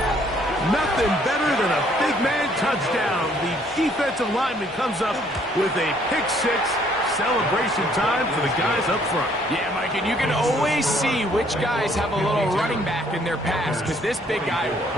Nothing better than a big man touchdown. The defensive lineman comes up with a pick-6. Celebration time for the guys up front. Yeah, Mike, and you can always see which guys have a little running back in their pass, because this big guy,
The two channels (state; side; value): normal; both; correlation 0.64